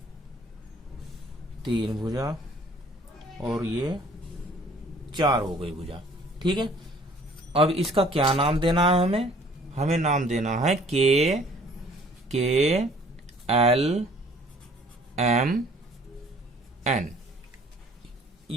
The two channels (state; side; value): normal; both; correlation 0.55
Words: 3 भुजा, और ये 4 हो गई भुजा। ठीक है, अब इसका क्या नाम देना है हमें नाम देना है KLMN।